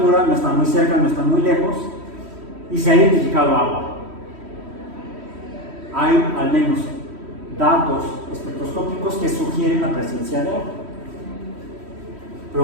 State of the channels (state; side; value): late; left; 3.1 ms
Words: no están muy cerca, no están muy lejos, y se ha identificado agua. Hay al menos datos espectroscópicos que sugieren la presencia de agua.